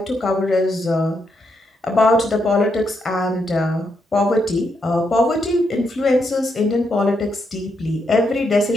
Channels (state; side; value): normal; both; correlation 0.80